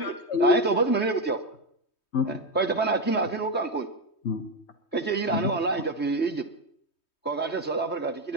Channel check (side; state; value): right; late; 3.2 ms